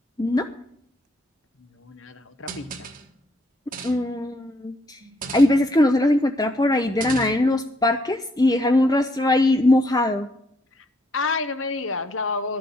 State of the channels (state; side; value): normal; both; correlation 0.71